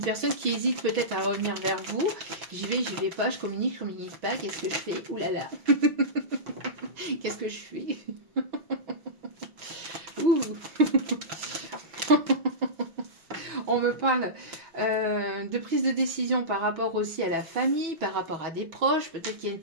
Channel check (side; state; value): left; late; 6.1 ms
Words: qui hésite peut-être à revenir vers vous. J'y vais pas, je communique pas. Qu'est-ce que je fais? Ouh là là. Qu'est-ce que je fais? Ouh. On me parle de prise de décision par rapport aussi à la famille, par rapport à des proches. Peut-être qu'il y a une